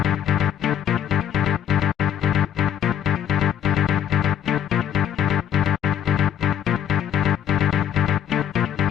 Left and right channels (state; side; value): quieter; right; 9.5 dB